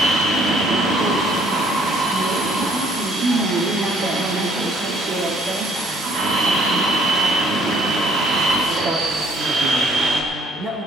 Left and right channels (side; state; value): both; normal; correlation 0.61